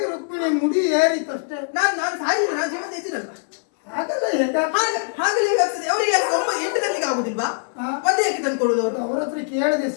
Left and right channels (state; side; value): silent; right; 59 dB below the other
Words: ರುಕ್ಮಿಣಿ ಮುಡಿ ಏರಿತಷ್ಟೇ. ನಾನು ಸಾಯಿಲ್ಲ, ನಾನು ಜೀವನ ಇದ್ದಿರಲ್ವಾ? ಹಾಗಲ್ಲ ಹಾಗಲೇ ಆಗ್ತದೆ. ಅವರಿಗೆ 9-8 ಗಂಟೆಗೆ ಆಗುದಿಲ್ವಾ? ಹಾ. ಒಂದೇ ಯಾಕೆ ತಂದು ಕೊಡುವುದು ಅವರು? ಅವ್ರ ಹತ್ರ ಕೇಳಿದೆ,